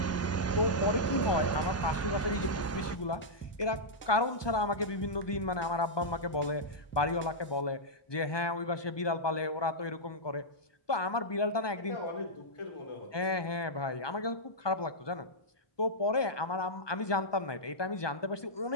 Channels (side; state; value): right; late; 1.2 ms